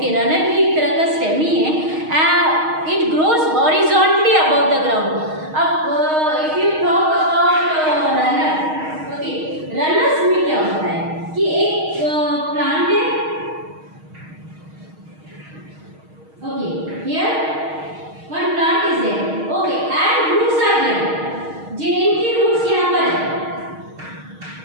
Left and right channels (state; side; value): late; left; 6.4 ms